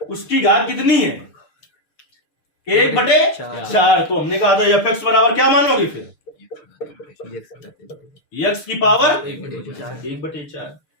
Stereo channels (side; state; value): right; late; 6.7 ms